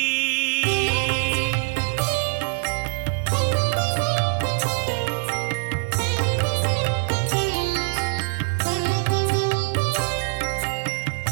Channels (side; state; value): left; silent; 63 dB below the other